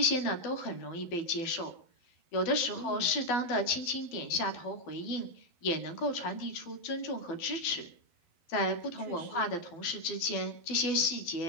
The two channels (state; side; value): late; right; 12 ms